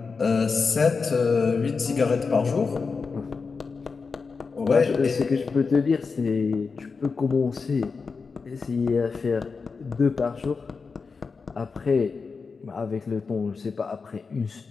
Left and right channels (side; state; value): right; quieter; 4.8 dB